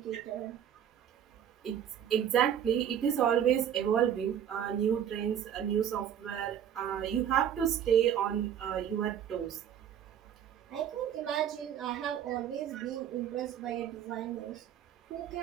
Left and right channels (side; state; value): left; quieter; 9.4 dB